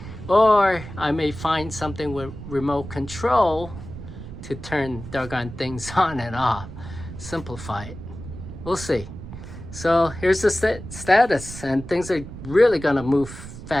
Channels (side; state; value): right; noise; rumble, 12 dB below the sound